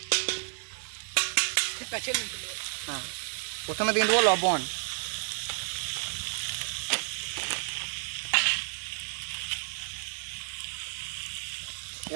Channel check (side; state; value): left; silent; 57 dB below the other